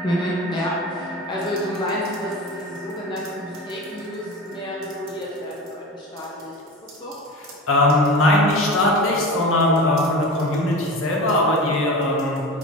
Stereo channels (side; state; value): both; normal; correlation 0.30